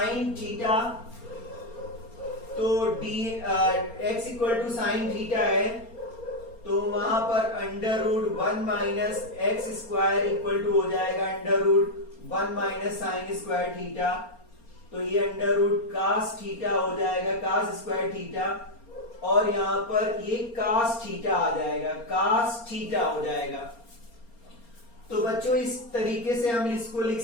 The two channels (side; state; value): right; late; 4.3 ms